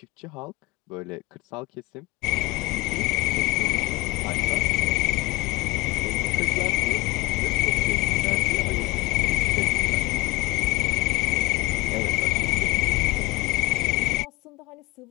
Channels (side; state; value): right; quieter; 21.4 dB